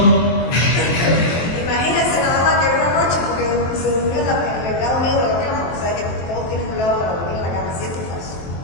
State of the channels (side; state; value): right; late; 23 ms